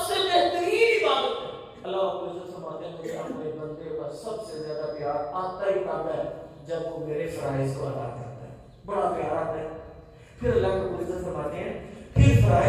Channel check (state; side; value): identical; both; correlation 1.00